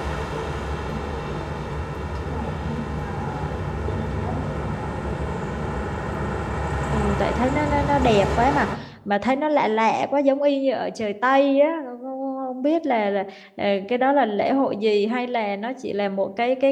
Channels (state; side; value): identical; both; correlation 1.00